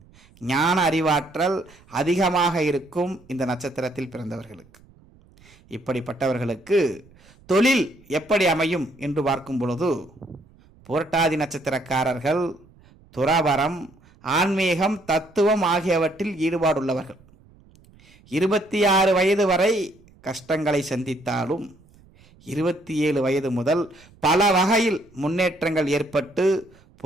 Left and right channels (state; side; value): noise; right; rumble, 28 dB below the sound